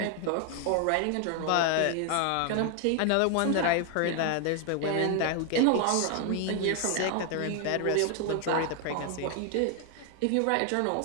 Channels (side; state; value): both; different; correlation 0.00